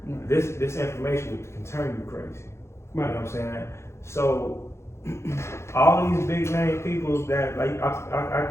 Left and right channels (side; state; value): right; late; 0.13 ms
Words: This information can turn you crazy. You know what I'm saying? So all these big name people that like I